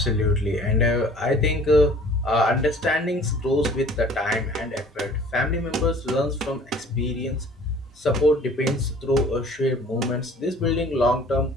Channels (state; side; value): normal; both; correlation 0.50